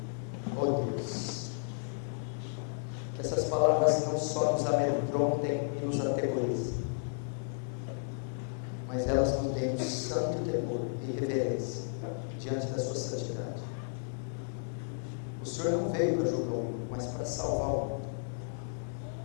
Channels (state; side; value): silent; right; digital silence